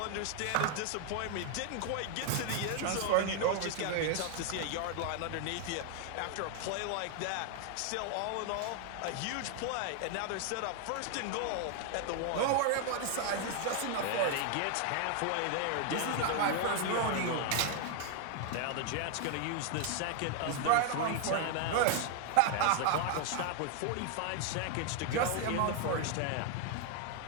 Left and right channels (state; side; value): different; both; correlation 0.00